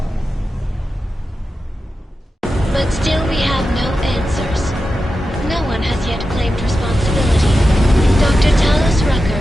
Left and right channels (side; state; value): both; normal; correlation 0.91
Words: But still we have no answers. No one has yet claimed responsibility. Dr. Talos